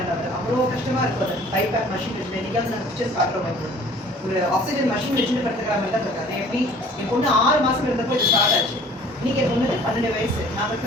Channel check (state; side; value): normal; both; correlation 0.51